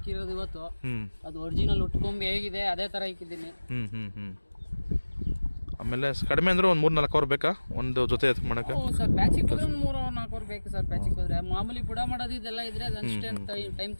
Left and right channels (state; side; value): inverted; both; correlation -1.00